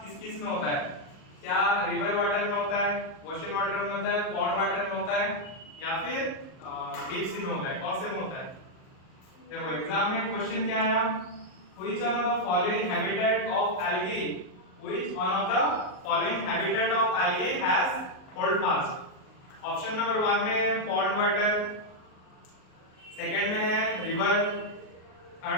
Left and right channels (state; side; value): late; right; 38 ms